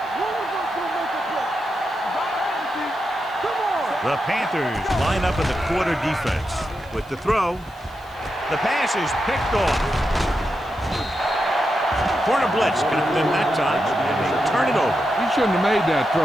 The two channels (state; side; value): noise; right; hiss, 29 dB below the sound